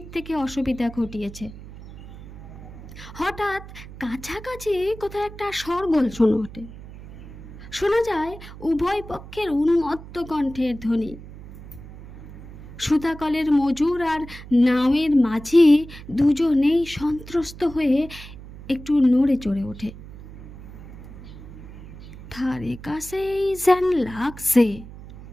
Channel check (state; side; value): noise; right; hum, 15 dB below the sound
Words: থেকে অসুবিধা ঘটিয়েছে। হঠাৎ কাছাকাছি কোথাও একটা শোরগোল শোনা যায় উভয় পক্ষের উন্মত্ত কণ্ঠের ধ্বনি। সুতাকলের মজুর আর নাওয়ের মাঝি দুজনেই সন্ত্রস্ত হয়ে একটু নড়ে চড়ে ওঠে। ধারে কাছেই যেন লাগছে।